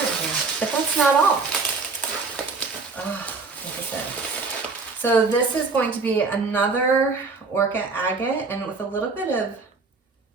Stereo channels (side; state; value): left; quieter; 4.2 dB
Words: here, but that's not all. Oh, look at this. So this is going to be another Orca Agate, and with a little bit of